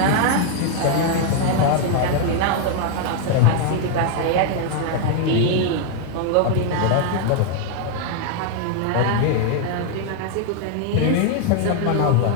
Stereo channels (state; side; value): different; both; correlation 0.00